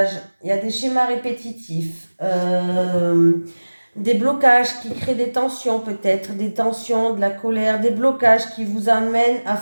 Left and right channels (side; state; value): both; inverted; correlation -1.00